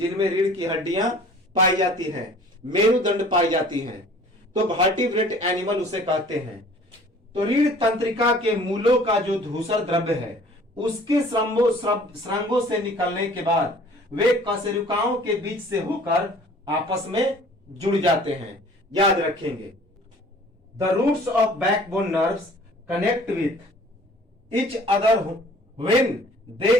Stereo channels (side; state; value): both; normal; correlation 0.50